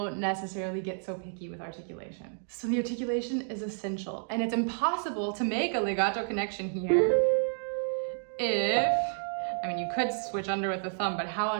necessarily get so picky with articulation. So the articulation is essential, and it's impossible to make a legato connection here if, I mean, you could switch under with the thumb, but how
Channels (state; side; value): silent; left; digital silence